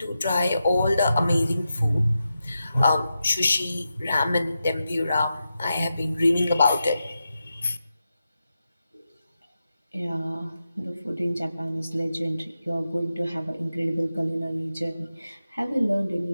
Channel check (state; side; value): inverted; both; correlation -0.89